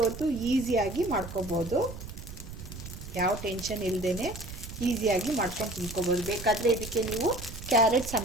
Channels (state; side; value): noise; right; rumble, 11 dB below the sound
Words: ಹೊತ್ತು ಈಸಿಯಾಗಿ ಮಾಡ್ಕೋಬೋದು, ಯಾವ ಟೆನ್ಷನ್ ಇಲ್ಲದೇ ಈಸಿಯಾಗಿ ಮಾಡ್ಕೊಂಡು ತಿನ್ಕೋಬೋದು. ಬೇಕಾದರೆ ಇದಕ್ಕೆ ನೀವು ಕ್ಯಾರೆಟ್